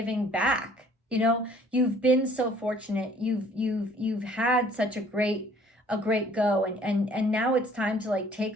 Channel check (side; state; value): both; normal; correlation 0.56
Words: back. You've been so fortunate. You've had such a great go, and now it's time to like take